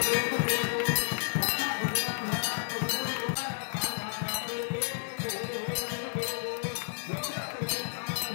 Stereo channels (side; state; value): right; silent; 57 dB below the other